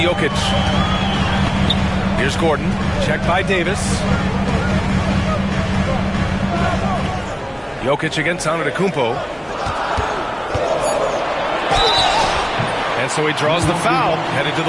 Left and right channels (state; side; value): identical; both; correlation 1.00